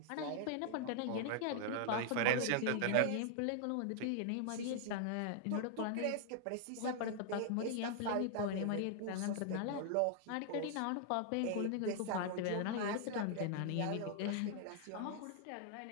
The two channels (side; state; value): both; different; correlation -0.01